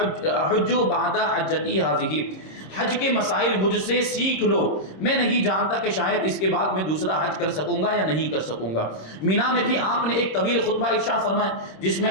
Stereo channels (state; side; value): late; right; 26 ms